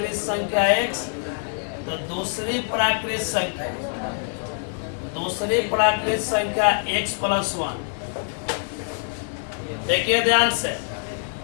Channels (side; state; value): right; silent; 61 dB below the other